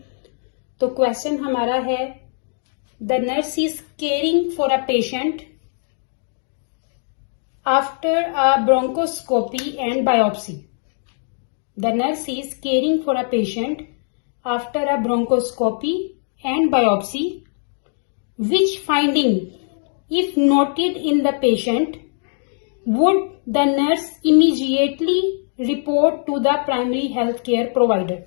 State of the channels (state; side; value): silent; right; 58 dB below the other